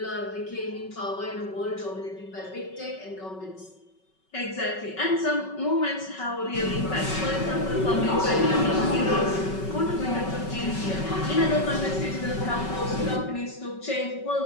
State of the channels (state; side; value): late; right; 5.3 ms